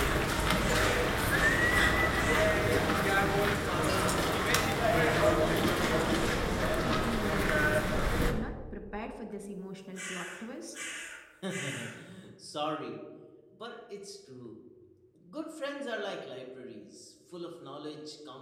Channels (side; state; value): both; identical; correlation 1.00